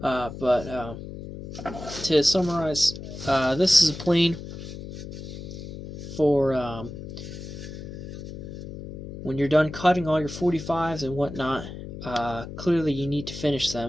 to summarize, this is a plane for when you're done cutting all your 45s and whatnot. Clearly you need to finish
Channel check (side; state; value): left; noise; hum, 11 dB below the sound